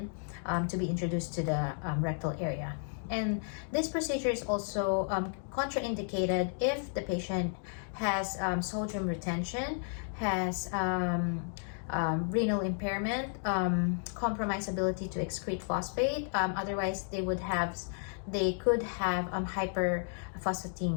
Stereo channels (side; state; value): right; silent; 56 dB below the other